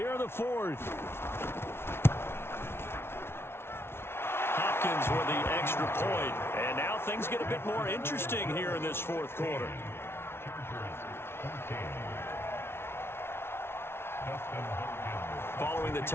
in the 4th. Hopkins with the extra point. And now things get a bit more interesting here in this 4th quarter. Following the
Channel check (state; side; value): late; right; 0.12 ms